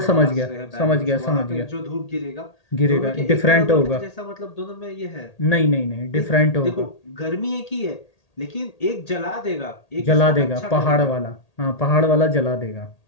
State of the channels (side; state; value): right; late; 1.8 ms